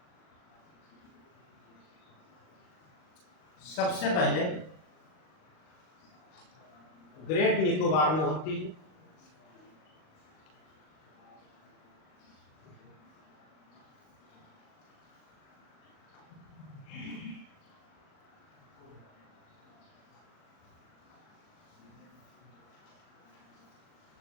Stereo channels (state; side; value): late; right; 38 ms